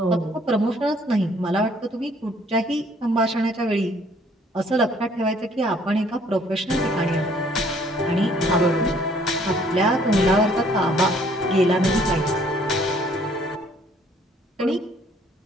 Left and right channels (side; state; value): both; normal; correlation 0.61